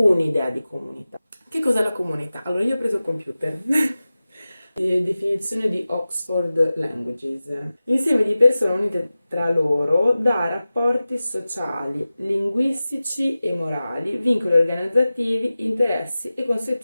di comunità. Che cos'è la comunità? Allora, io ho preso il computer. Definizione di Oxford Languages. Insieme di persone unite tra loro da rapporti sociali, linguistici e morali, vincoli organizzativi, interessi e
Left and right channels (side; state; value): both; inverted; correlation -0.96